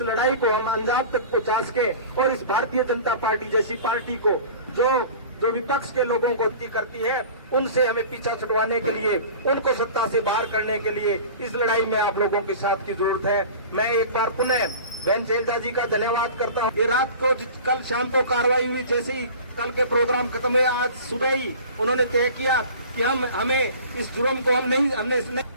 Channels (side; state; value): both; inverted; correlation -0.40